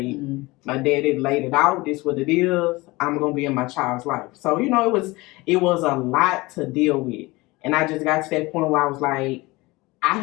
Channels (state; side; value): quieter; right; 22.0 dB